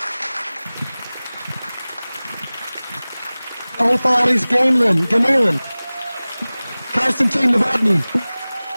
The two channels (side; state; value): both; inverted; correlation -0.99